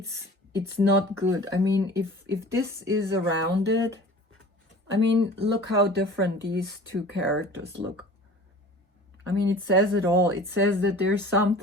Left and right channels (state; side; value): normal; both; correlation 0.42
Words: not good. I mean, if this is around it, I mean, look how different these two characters look. I mean, it says it all. It says that there's